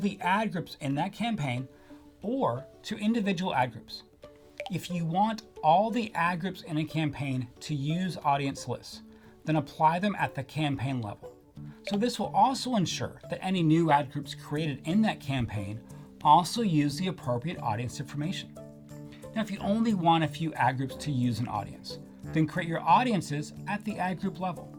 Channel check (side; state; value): both; identical; correlation 1.00